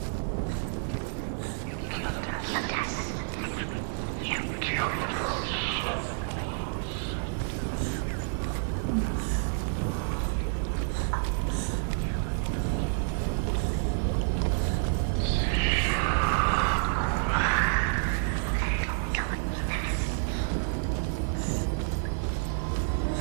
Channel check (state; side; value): silent; left; digital silence